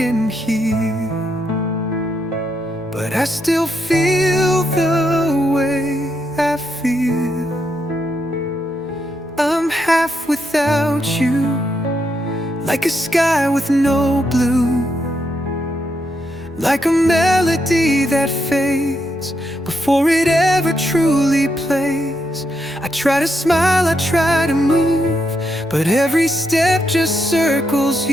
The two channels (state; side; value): normal; both; correlation 0.80